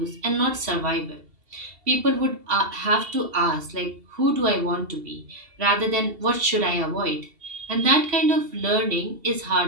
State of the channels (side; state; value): left; late; 2.7 ms